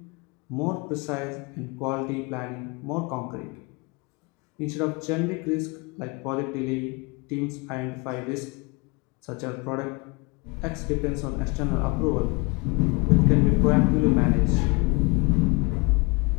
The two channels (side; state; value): right; quieter; 28.4 dB